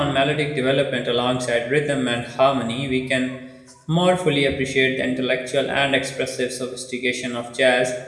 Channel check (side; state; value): both; identical; correlation 1.00